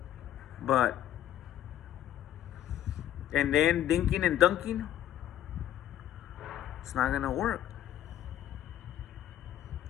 But, and then dinking and dunking, it's not going to work.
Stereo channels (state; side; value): quieter; right; 11.9 dB